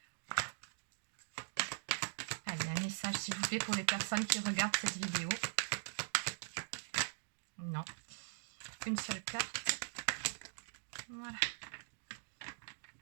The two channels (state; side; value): silent; left; digital silence